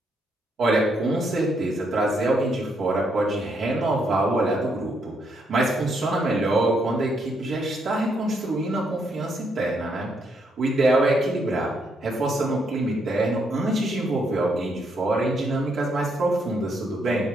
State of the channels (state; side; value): normal; both; correlation 0.75